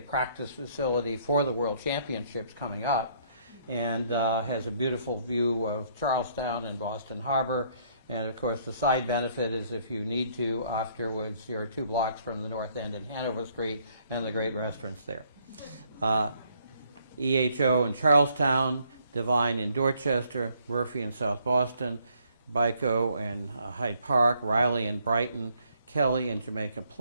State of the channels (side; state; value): both; inverted; correlation -0.67